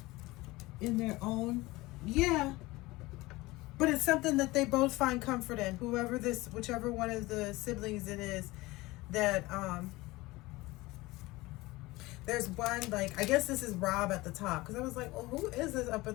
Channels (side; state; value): right; quieter; 20.6 dB